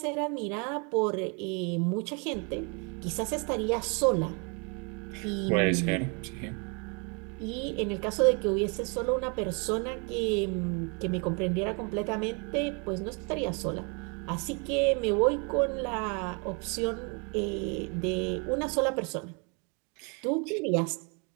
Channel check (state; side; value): quieter; left; 34.6 dB